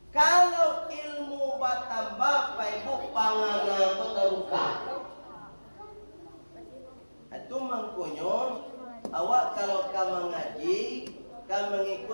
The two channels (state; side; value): inverted; both; correlation -1.00